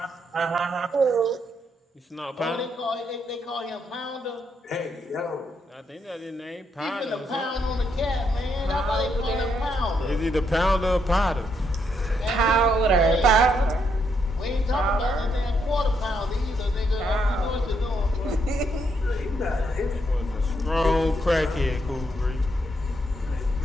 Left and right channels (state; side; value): normal; both; correlation 0.77